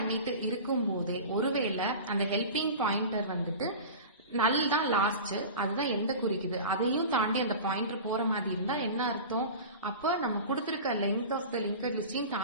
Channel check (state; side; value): inverted; both; correlation -0.33